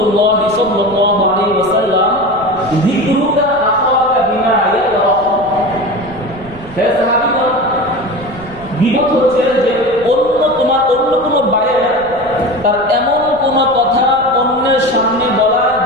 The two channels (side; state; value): right; noise; rumble, 21 dB below the sound